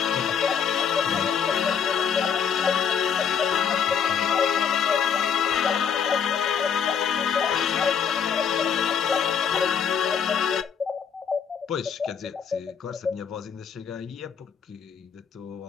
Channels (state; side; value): quieter; right; 7.3 dB